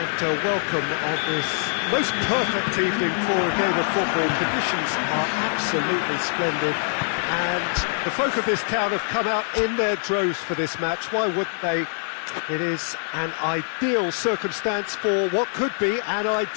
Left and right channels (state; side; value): silent; right; digital silence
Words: welcome on this most perfect evening for a game of football. Conditions are absolutely splendid and the folk of this town have come out in their droves for this match. Why wouldn't they? It is an ideal circumstance for what could be an